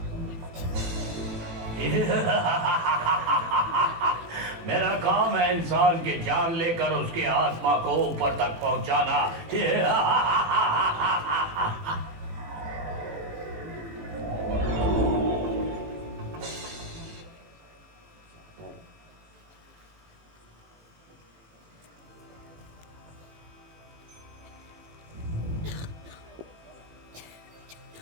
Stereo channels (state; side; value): late; left; 18 ms